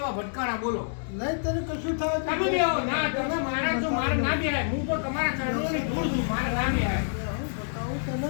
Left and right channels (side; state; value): right; silent; 59 dB below the other